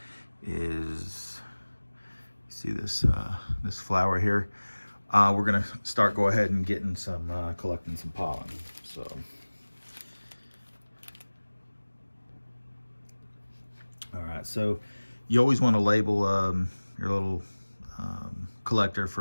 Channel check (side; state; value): both; inverted; correlation -1.00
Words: is see this flower here. We're gonna go ahead and getting some collecting some pollen. So. All right, so you always want to label your little collector